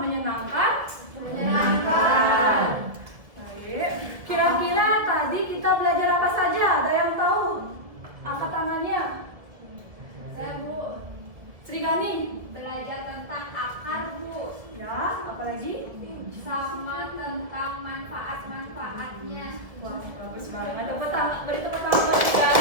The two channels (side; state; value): left; late; 1.7 ms